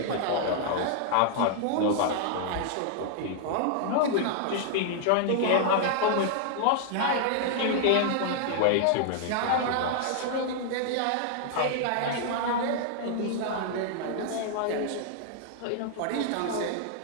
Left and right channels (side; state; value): both; different; correlation -0.01